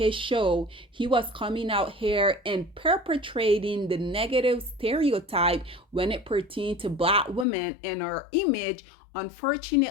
show, he was coming out here and perpetrating the negative stereotype when it pertained to black women and our image.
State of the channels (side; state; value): right; drops out; at 7.5 s